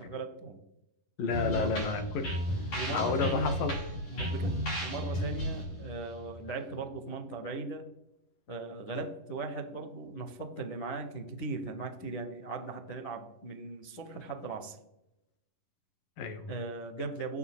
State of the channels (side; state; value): right; late; 11 ms